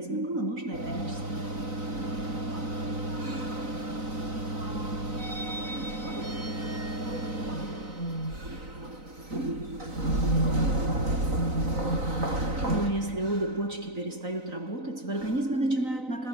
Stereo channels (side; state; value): left; late; 3.9 ms